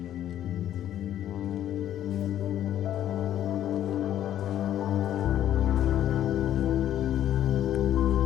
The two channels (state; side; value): quieter; right; 11.5 dB